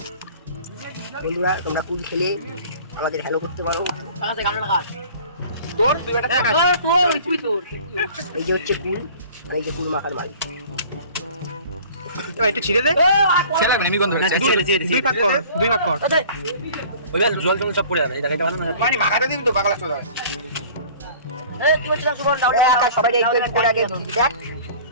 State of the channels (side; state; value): both; inverted; correlation -0.46